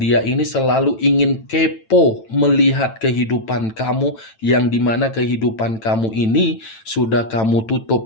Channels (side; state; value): right; late; 9.0 ms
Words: ini selalu ingin kepo melihat kehidupan kamu, yang dimana kehidupan kamu ini sudah kamu